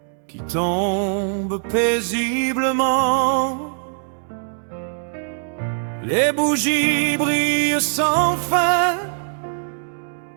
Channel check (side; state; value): left; silent; digital silence